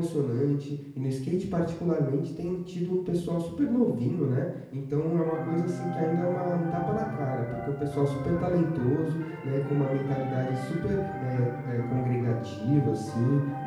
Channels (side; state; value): both; identical; correlation 1.00